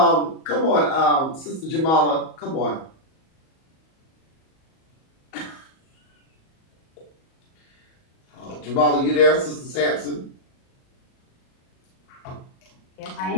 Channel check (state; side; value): late; right; 37 ms